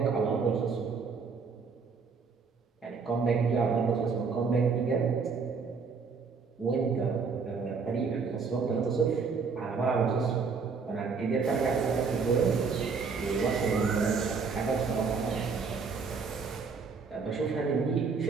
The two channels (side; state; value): left; quieter; 5.1 dB